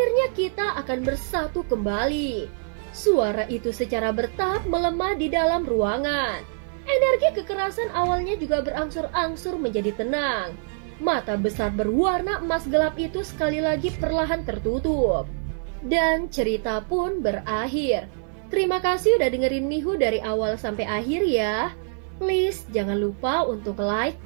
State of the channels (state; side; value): silent; left; 56 dB below the other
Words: kita akan bersatu kembali. Suara itu secara bertahap melemah di dalam ruangan. Energi kekerasan awalnya juga berangsur-angsur menjadi tenang. Mata besar berwarna emas gelap itu sekali lagi perlahan tertutup. Dan cerita pun berakhir. Terima kasih udah dengerin Mihu dari awal sampai akhir ya. Please jangan lupa untuk like,